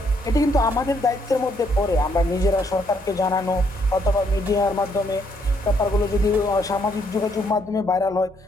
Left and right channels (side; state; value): both; normal; correlation 0.71